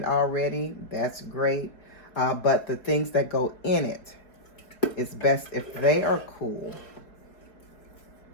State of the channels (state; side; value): late; right; 4.5 ms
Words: already, that's great. But the things that go in it, it's best if they are cool.